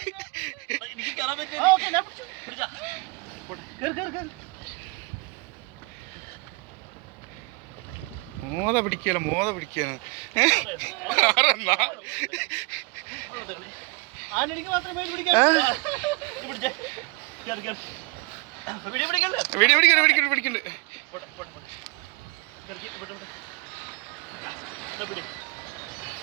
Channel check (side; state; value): left; quieter; 28.5 dB